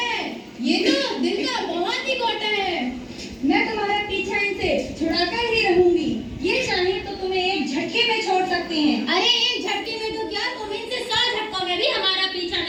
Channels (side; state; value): both; identical; correlation 1.00